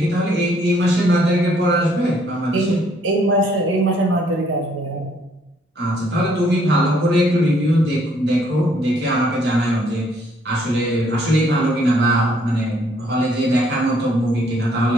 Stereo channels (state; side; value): normal; both; correlation 0.66